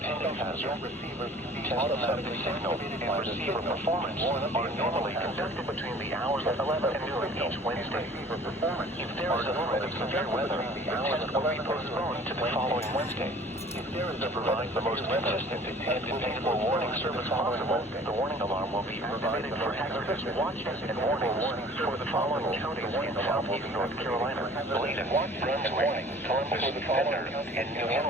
hazard. Tests of the signal and receiver performance are normally conducted between the hours of 11 and noon each Wednesday. If there is a threat of severe weather, the test will be postponed to the following Wednesday. To provide the most consistent and dependable warning service possible, the warning alarm will be activated for hazardous watches and warnings for the following counties in southeast North Carolina: Bladen, Brunswick, Columbus, Penner, and New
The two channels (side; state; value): both; normal; correlation 0.48